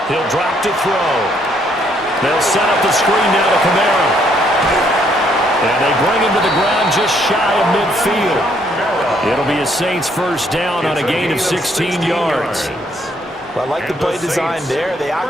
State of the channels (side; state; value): both; normal; correlation 0.69